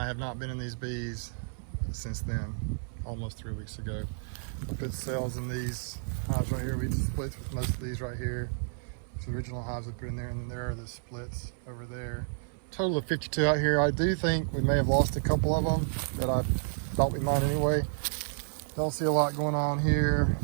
have not been in these bees since then, almost 3 weeks ago. I put cells in these hives right here. We did splits with most of these right here. It's the original hives we put in there, and then there are the splits over there. Total of 52 out here. I do think we may have lost a couple of them that I thought we might anyway. Don't see a lot going on here.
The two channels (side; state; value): left; silent; 57 dB below the other